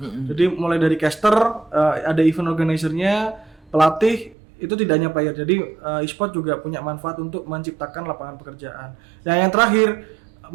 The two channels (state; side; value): drops out; left; at 4.4 s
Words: Jadi mulai dari caster, ada event organizer-nya, pelatih, itu tidak hanya player. Jadi e-sport juga punya manfaat untuk menciptakan lapangan pekerjaan. Dan yang terakhir,